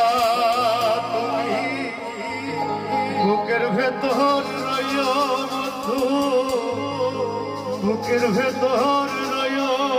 তুমি বুকের ভেতর রইও বন্ধু, বুকের ভেতর রইও।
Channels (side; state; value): both; identical; correlation 1.00